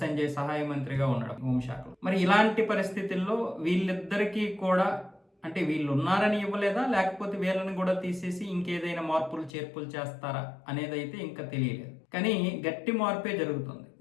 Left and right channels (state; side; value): drops out; right; at 9.5 s